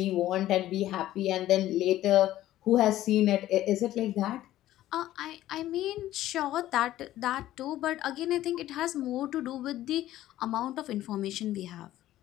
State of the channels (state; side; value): quieter; right; 14.1 dB